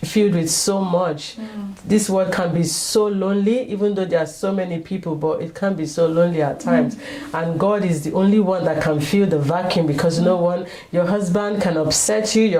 with so much. This world can be so lonely, even though there are so many people, but it can be so lonely at times. And God is the only one that can fill the vacuum, because no one, your husband can upset you,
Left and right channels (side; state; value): both; identical; correlation 1.00